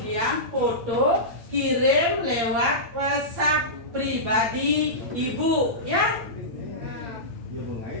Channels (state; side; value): late; left; 8.6 ms